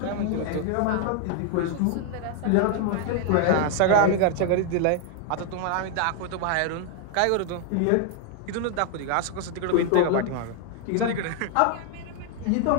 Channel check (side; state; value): both; different; correlation 0.00